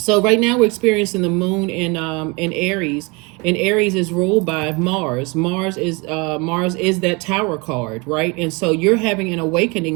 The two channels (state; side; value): quieter; left; 28.1 dB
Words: right now we're experiencing the moon in Aries, and Aries is ruled by Mars. Mars is that Tower card, right? And so you're having an